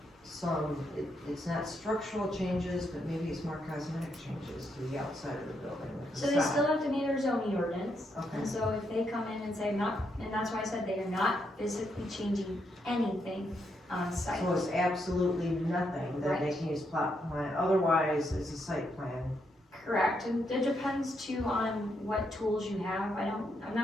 it's not structural changes, but maybe it's more cosmetic changes to the outside of the building. with the So they facade. still have to meet our zoning ordinance, Okay. and so if they come in and say not, and that's why I said they are not physically changing anything on site. So it's absolutely nothing that they Right. can use plot plan, otherwise it's a site plan. Correct, and it depends too on what tools you have. I'm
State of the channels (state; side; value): normal; both; correlation 0.79